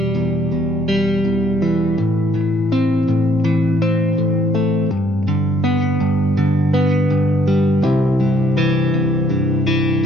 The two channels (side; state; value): both; normal; correlation 0.66